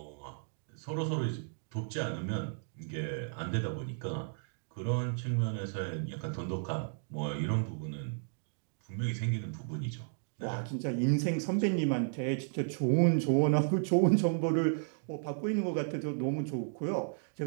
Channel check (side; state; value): left; silent; digital silence